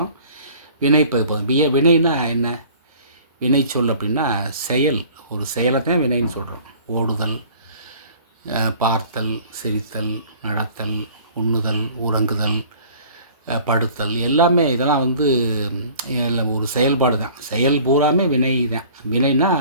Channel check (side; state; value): both; inverted; correlation -0.49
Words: வினை பகுபதம். வினைன்னா என்ன? வினை சொல் அப்படின்னா செயல். ஒரு செயலை தான் வினைன்னு சொல்கிறோம். ஓடுதல், பார்த்தல், சிரித்தல், நடத்தல், உண்ணுதல், உறங்குதல், படுத்தல் எல்லாமே இதெல்லாம் ஒரு செயல்பாடு தான். செயல் பூராமே வினை தான். வினைனா